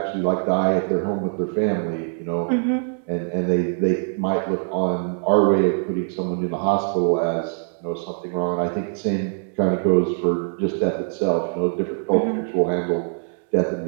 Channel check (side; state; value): left; silent; digital silence